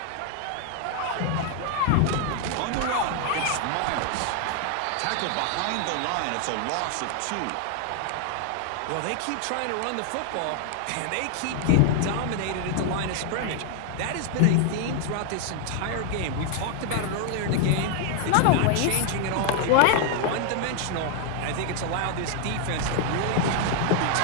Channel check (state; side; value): different; both; correlation 0.00